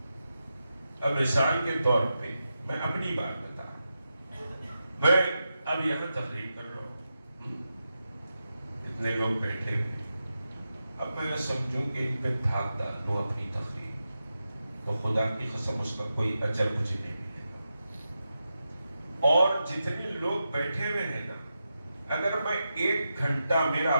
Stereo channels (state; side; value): inverted; both; correlation -0.89